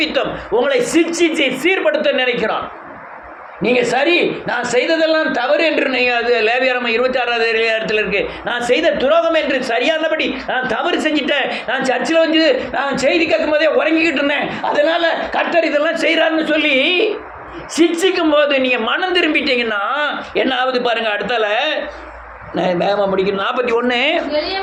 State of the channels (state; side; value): identical; both; correlation 1.00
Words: உங்களை சிக்ஷிச்சு சீர்படுத்த நினைக்கிறான். நீங்க சரி, நான் செய்ததெல்லாம் தவறு என்று அது லேவியராகமம் 26வது அதிகாரத்தில் இருக்கு. நான் செய்த துரோகம் என்று சரியானபடி நான் தவறு செஞ்சிட்டேன். நான் சர்ச்சில் வந்து நான் செய்தி கேட்கும் போதே உறங்கிக்கிட்டு இருந்தேன். அதனால கர்த்தர் இதெல்லாம் செய்கிறாருன்னு சொல்லி சிக்ஷிக்கும் போது நீங்க மனம் திரும்பிட்டீங்கன்னா என்ன ஆகுது பாருங்க. அடுத்தால வேகமாக முடிக்கணும். 41